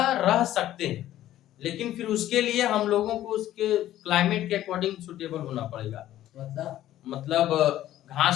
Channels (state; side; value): quieter; right; 13.3 dB